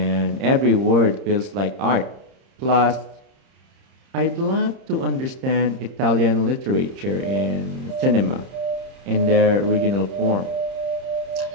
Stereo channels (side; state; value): left; late; 30 ms